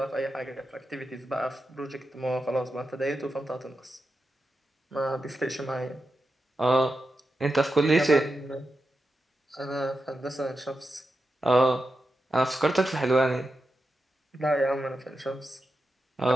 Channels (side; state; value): both; normal; correlation 0.89